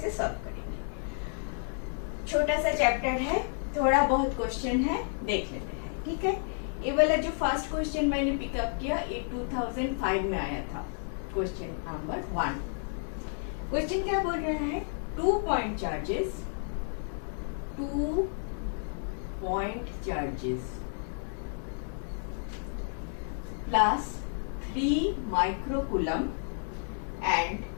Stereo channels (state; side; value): silent; right; 57 dB below the other